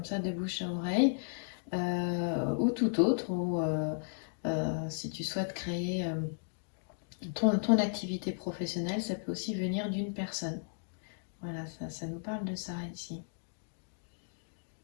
ça de bouche à oreille, ou tout autre, ou si tu souhaites créer ton activité professionnelle, ça peut aussi venir d'une personne. Voilà, ça nous parle de ça ici.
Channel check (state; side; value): silent; right; digital silence